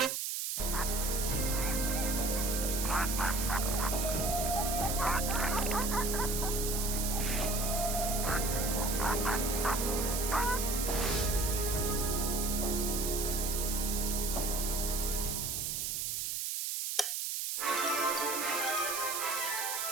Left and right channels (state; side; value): noise; right; hiss, 1 dB below the sound